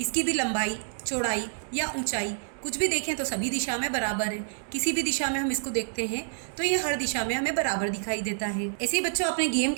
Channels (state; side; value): silent; left; digital silence